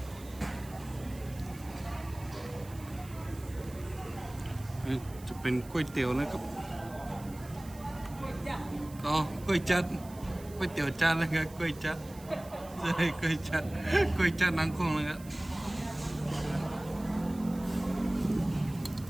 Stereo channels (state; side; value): noise; right; hiss, 20 dB below the sound